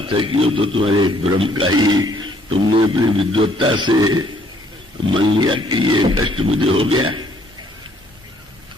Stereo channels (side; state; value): both; normal; correlation 0.64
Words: है कि वो तो तुम्हारे एक भ्रम का ही, तुमने अपनी विद्वत्ता से मान लिया कि ये कष्ट मुझे हो गया।